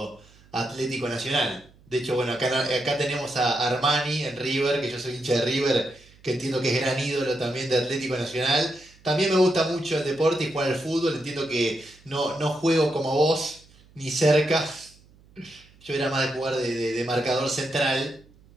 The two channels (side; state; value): right; noise; hum, 28 dB below the sound